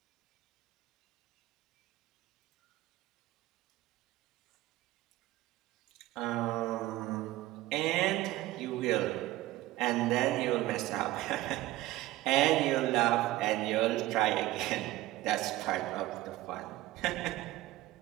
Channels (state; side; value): quieter; left; 16.6 dB